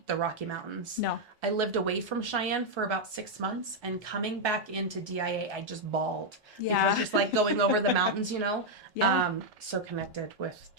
the Rocky Mountains. No. I lived away from Cheyenne for about 6 months, and coming back into DIA, I just bawled. Yeah. Because just going over the mountains, Yeah. so connected with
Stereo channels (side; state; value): both; normal; correlation -0.01